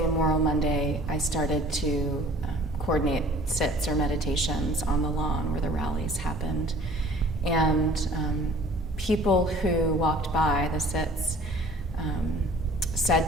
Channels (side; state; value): both; normal; correlation 0.50